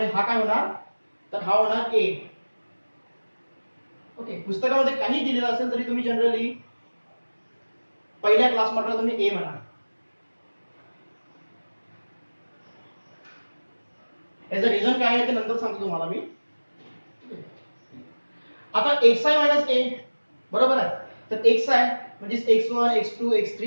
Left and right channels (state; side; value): inverted; both; correlation -1.00